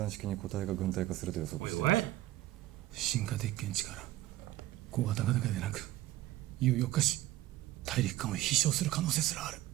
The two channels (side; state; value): left; quieter; 15.4 dB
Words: 式に個体が軍隊化すると予測 Wait, しています what? 進化鉄拳力小型化だけでなく有力化し大陸間を飛翔する可能性すらある